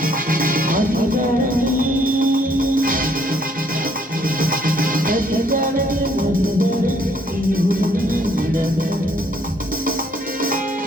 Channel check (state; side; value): normal; both; correlation 0.65